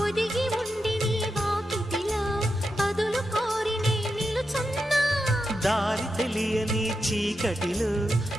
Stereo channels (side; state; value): both; normal; correlation 0.88